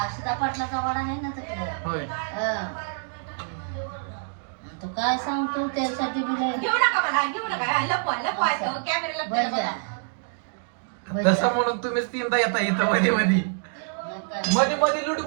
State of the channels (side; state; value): left; silent; digital silence